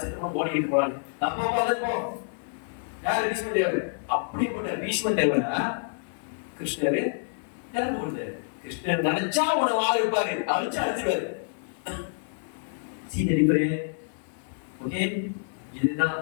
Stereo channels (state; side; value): silent; right; 60 dB below the other